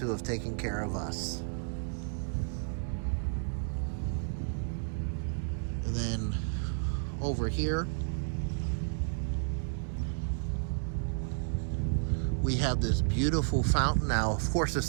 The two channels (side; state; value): left; silent; digital silence